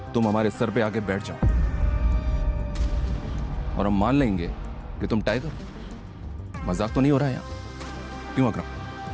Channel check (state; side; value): identical; both; correlation 1.00